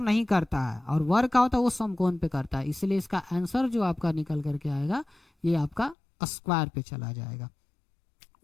नहीं करता है, और वर्ग का होता है वो समकोण पे करता है। इसलिए इसका आंसर जो आपका निकल करके आएगा ये आपका स्क्वायर पे चला जाएगा।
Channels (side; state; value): right; drops out; at 6.0 s